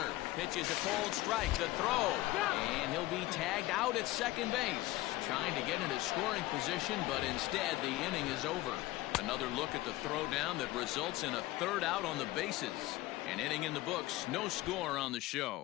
Pitches a cold strike. The throw. And he'll be tagged out at second base. Trying to get into scoring position, but instead the inning is over. Another look at the throwdown that results in a third out on the bases. An inning in the books. No score on the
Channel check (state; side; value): quieter; right; 17.9 dB